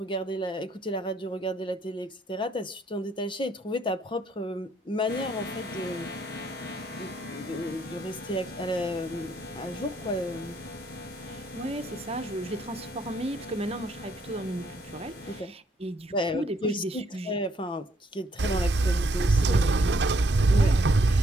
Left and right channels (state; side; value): normal; both; correlation 0.70